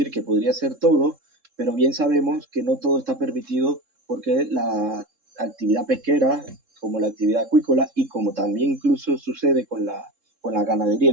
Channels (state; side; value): late; left; 3.7 ms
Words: que podría ser todo, pero bien sabemos que no todo está permitido porque la actividad pesquera, como la actividad acuícola y como también incluso sucede con la